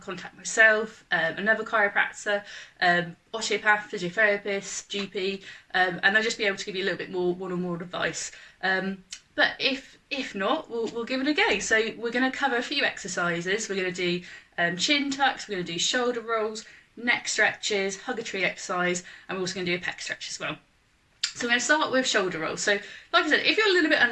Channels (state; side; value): identical; both; correlation 1.00